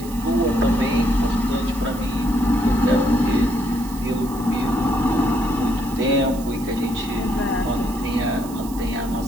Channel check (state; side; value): noise; right; hiss, 17 dB below the sound